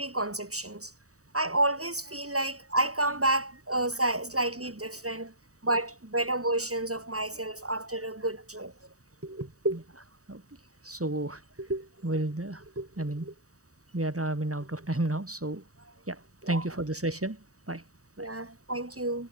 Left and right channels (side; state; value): left; late; 0.66 ms